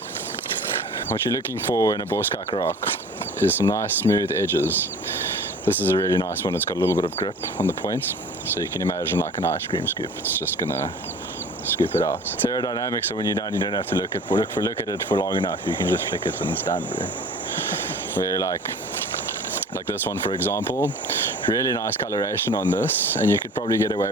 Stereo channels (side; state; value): both; normal; correlation 0.44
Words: What you're looking for in a boskak rock is some nice smooth edges. This is a really nice one. It's got a little bit of grip on the points, so you can imagine like an ice cream scoop. It's just gonna scoop it out. It's aerodynamic, so when you're done, you don't have to look at it for long enough. You can just flick it and it's done, bro. Where like this one, for example, really nice coloration on this, and you could probably get